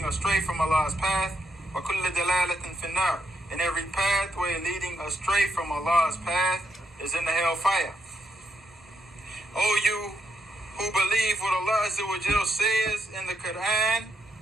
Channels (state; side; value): normal; both; correlation 0.78